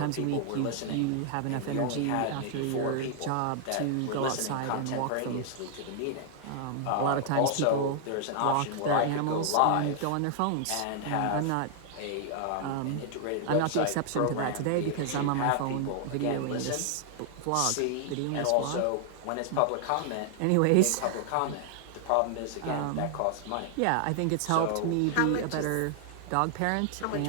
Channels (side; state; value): both; different; correlation 0.00